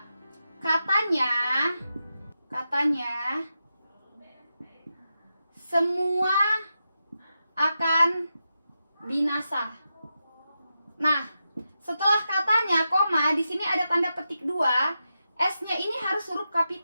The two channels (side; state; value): both; inverted; correlation -0.88